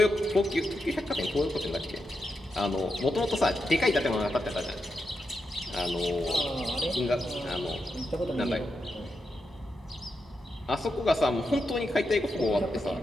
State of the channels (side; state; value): both; normal; correlation 0.86